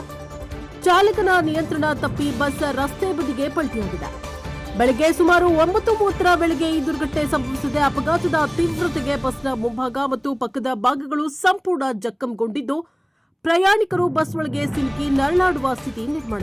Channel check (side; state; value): both; identical; correlation 1.00